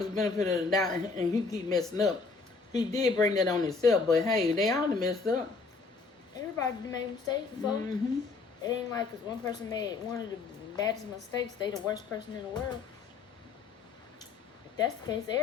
the benefit of the doubt and he keep messing up. He did bring that on himself, but hey, they all done messed up. Everybody done made mistakes before. Mm-hmm. It ain't like because one person made one of the baddest mistakes, they the worst person in the world. If that's the case,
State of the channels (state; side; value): quieter; right; 4.4 dB